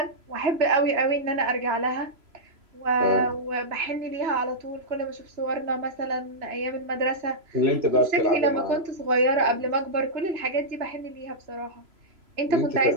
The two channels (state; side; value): late; left; 3.0 ms